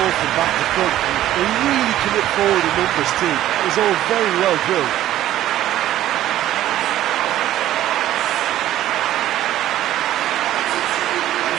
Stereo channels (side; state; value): left; quieter; 13.3 dB